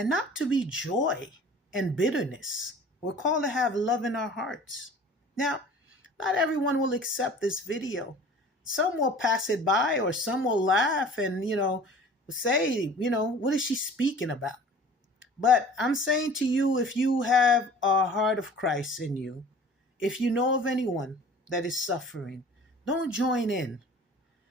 not to be joy and bitterness. We're called to have love in our hearts. Now, not everyone will accept this video. Some will pass it by, or some will laugh and, say, what is she speaking about? But I'm saying to you, if you have a heart of Christ in you, if you know of anyone that is suffering, don't join in.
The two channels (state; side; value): normal; both; correlation 0.45